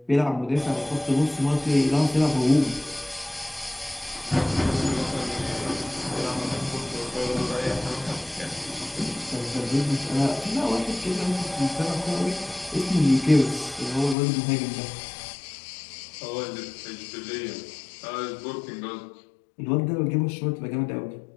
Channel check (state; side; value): drops out; right; at 14.2 s